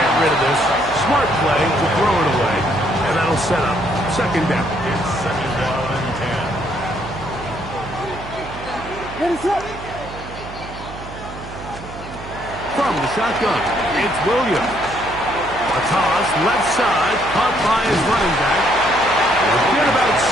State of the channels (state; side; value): noise; right; hum, 13 dB below the sound